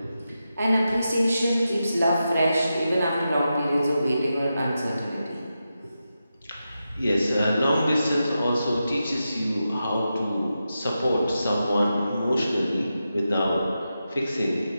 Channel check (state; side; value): inverted; both; correlation -0.89